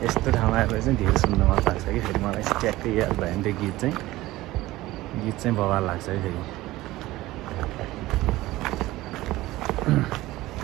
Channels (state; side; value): quieter; left; 17.6 dB